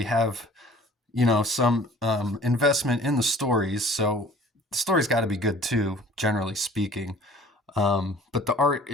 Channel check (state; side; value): normal; both; correlation 0.50